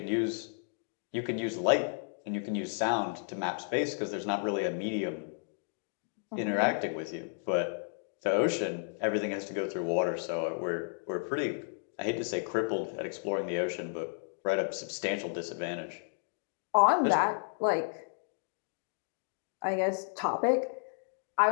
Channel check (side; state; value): right; silent; digital silence